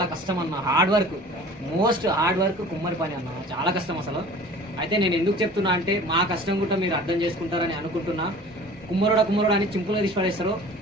కష్టం అన్న, hard work, most hard work కుమ్మరి పని అన్న, చాలా కష్టం అసలు. అయితే నేను ఎందుకు చెప్తున్నా అంటే మా కష్టం కూడా మీరు అర్థం చేసుకుంటారని అనుకుంటున్నా. కుమ్మరుడు అని చింపులో తీసి పడేస్తారు.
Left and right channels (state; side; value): normal; both; correlation 0.44